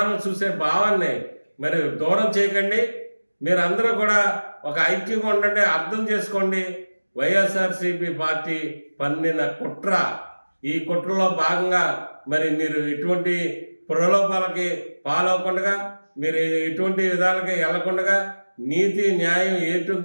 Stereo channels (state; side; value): inverted; both; correlation -1.00